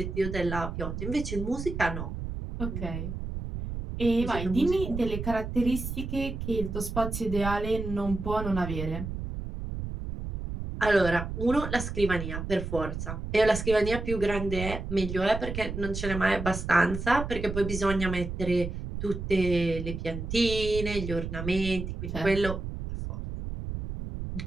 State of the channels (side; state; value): right; noise; rumble, 6 dB below the sound